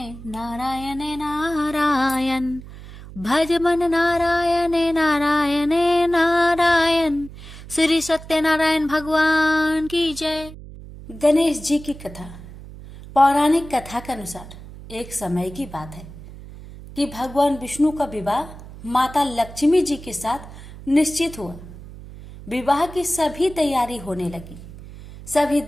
नारायण नारायण भज मन नारायण नारायण नारायण। श्री सत्यनारायण भगवान की जय। गणेश जी की कथा। पौराणिक कथा के अनुसार एक समय की बात है कि भगवान विष्णु का विवाह माता लक्ष्मी जी के साथ निश्चित हुआ। विवाह की सभी तैयारी होने लगी। सभी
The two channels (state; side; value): noise; right; hum, 15 dB below the sound